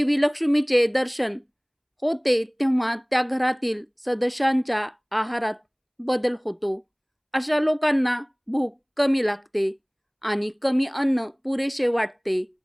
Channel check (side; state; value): both; identical; correlation 1.00